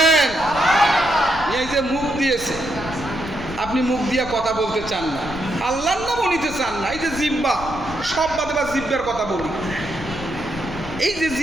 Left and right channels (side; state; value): left; noise; rumble, 13 dB below the sound